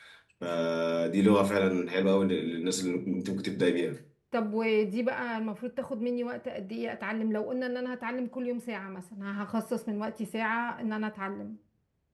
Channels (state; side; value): identical; both; correlation 1.00